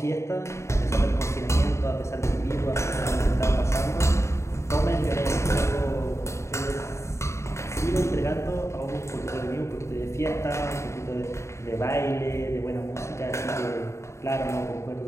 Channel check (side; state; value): right; late; 0.14 ms